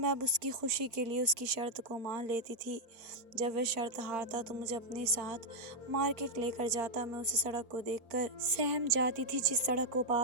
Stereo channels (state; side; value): late; left; 4.4 ms